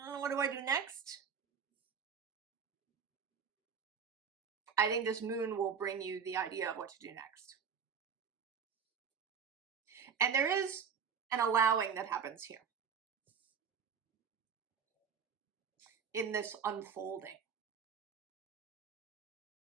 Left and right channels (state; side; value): quieter; left; 6.7 dB